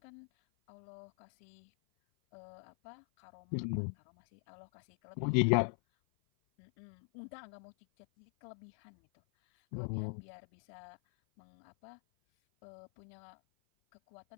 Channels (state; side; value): silent; right; 51 dB below the other